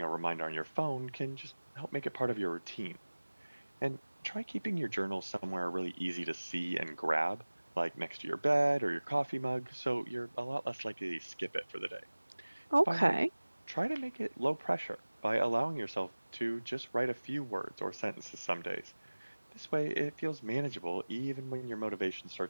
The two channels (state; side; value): inverted; both; correlation -1.00